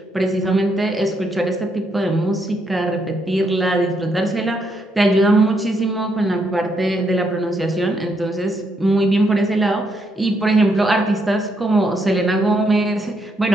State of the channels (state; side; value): normal; both; correlation 0.76